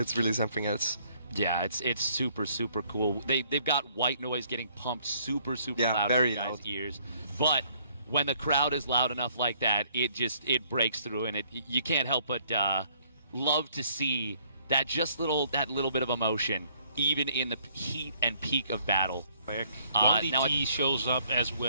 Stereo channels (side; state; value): both; inverted; correlation -0.65